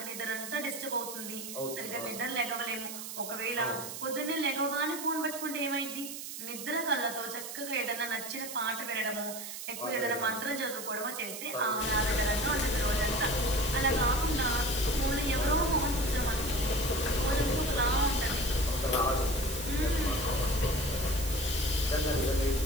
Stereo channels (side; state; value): right; noise; hiss, 8 dB below the sound